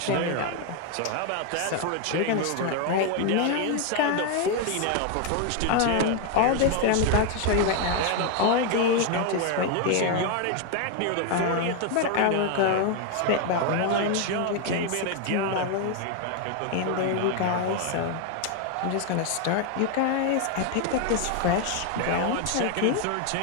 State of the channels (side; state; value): both; different; correlation 0.01